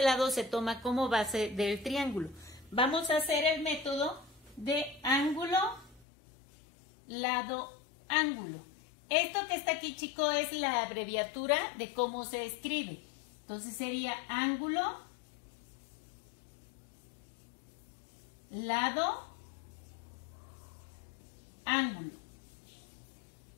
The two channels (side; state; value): right; drops out; at 6.1 s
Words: lado se toma como base del triángulo. Vamos a hacer el método de ángulo, lado, ángulo. Esto que está aquí, chicos, es la abreviatura de cómo se escribe. Entonces sería ángulo, lado, ángulo.